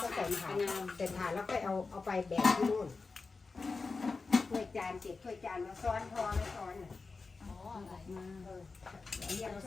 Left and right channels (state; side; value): quieter; right; 4.2 dB